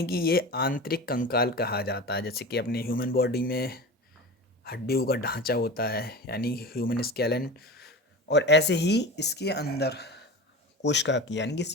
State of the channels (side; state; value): both; normal; correlation 0.31